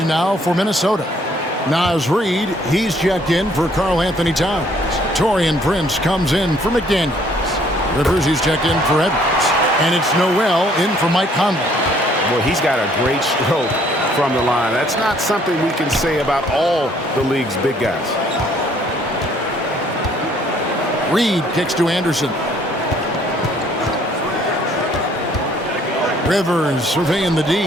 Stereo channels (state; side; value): normal; both; correlation 0.62